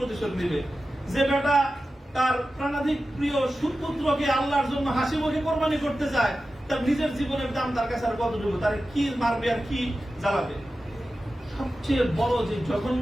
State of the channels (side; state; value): both; normal; correlation 0.93